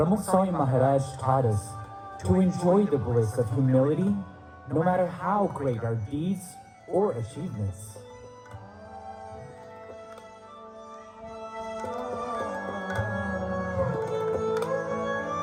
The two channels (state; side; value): identical; both; correlation 1.00